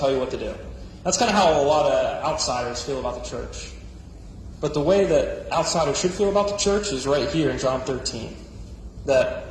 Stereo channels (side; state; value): both; identical; correlation 1.00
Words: you what to do. That's kind of how a lot of outsiders feel about the church. But the way that outsiders should feel about the church is right here in John 13.